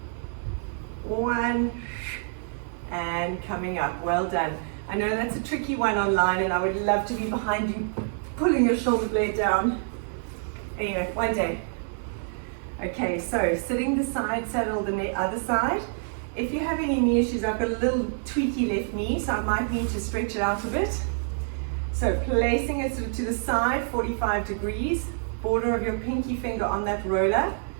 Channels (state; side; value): silent; left; digital silence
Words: 1, and coming up. Well done. I know that's a tricky one online, and I would love to be behind you pulling your shoulder blade down. Anyway, one day. Okay, so sitting the side saddle the other side. If you have any knee issues, I've got a little tweaky left knee, so I might need to stretch it out a bit. So placing it sort of to the side, 45 degrees, border of your pinky finger on that roller.